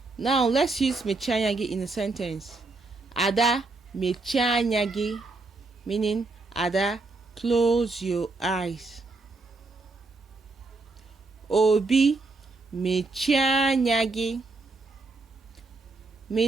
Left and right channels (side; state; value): left; quieter; 3.5 dB